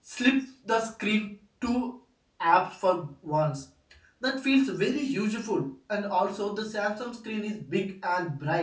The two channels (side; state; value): both; identical; correlation 1.00